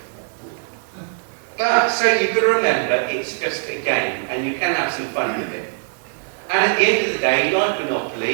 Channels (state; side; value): silent; left; digital silence